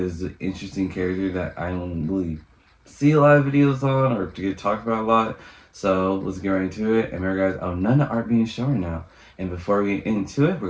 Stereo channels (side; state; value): both; identical; correlation 1.00